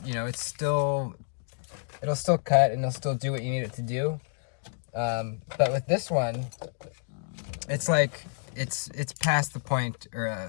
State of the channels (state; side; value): silent; right; digital silence